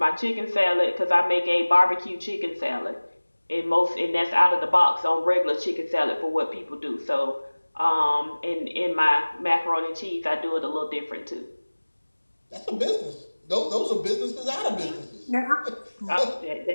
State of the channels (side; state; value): both; inverted; correlation -1.00